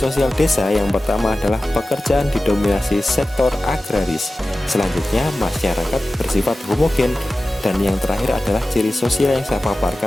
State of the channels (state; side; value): normal; both; correlation 0.95